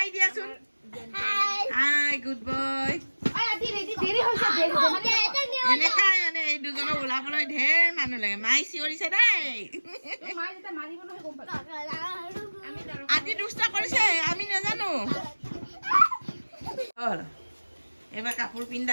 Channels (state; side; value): inverted; both; correlation -1.00